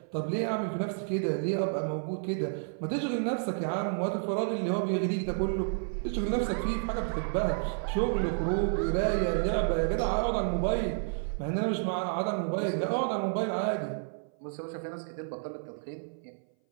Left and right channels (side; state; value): left; silent; 57 dB below the other